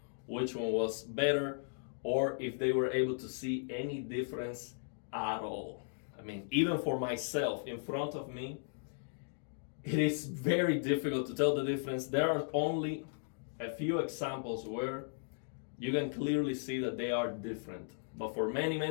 which one was better or if they were able to see any difference at all. I mean, even for myself in front of me, it is very difficult to tell the difference. There are only a few examples where you can clearly see that they are different. But for many,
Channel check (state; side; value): silent; right; digital silence